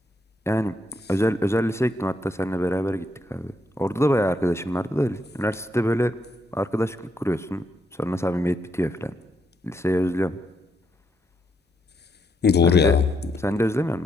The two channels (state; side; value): normal; both; correlation 0.78